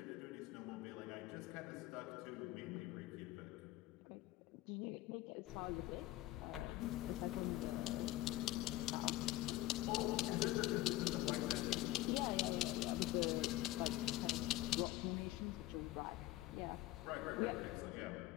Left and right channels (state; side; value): quieter; right; 16.2 dB